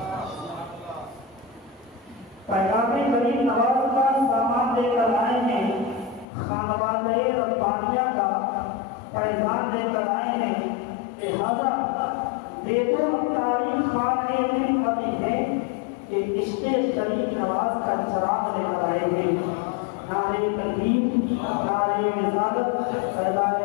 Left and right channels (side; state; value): right; drops out; at 6.2 s